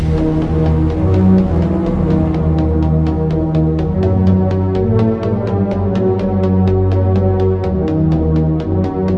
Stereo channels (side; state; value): both; identical; correlation 1.00